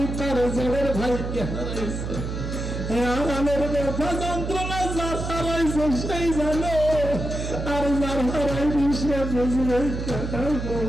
তার জেলের ভাইকে হারাইছে। আরামের ব্যথা যন্ত্রণা যার হারাইছে সেই জানে, আর যার হারাইনি সে বুঝবে।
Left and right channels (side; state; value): right; noise; hum, 5 dB below the sound